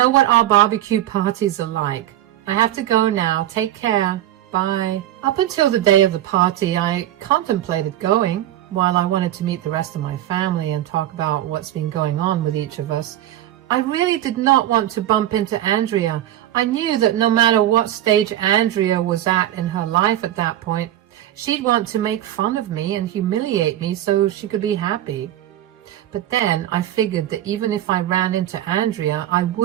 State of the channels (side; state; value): left; quieter; 12.9 dB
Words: what our barbecue parties are like. I have to go now. Take care. Bye." Up until the day of the party, I contemplated going. While I wanted to meet the rest of my family and talk about what's been going on with each of us, I really did not want to bump into Andrea. I knew that no matter what stage Andrea was at in her life at that point, she'd want to make fun of me and humiliate me so she could be happy. But then I figured that even if I ran into Andrea, I